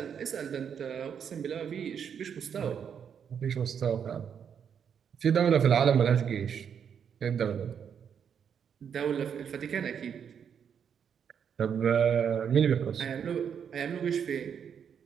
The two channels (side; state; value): left; quieter; 7.7 dB